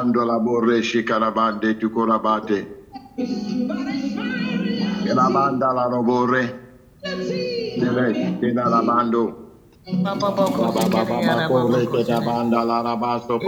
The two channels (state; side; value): identical; both; correlation 1.00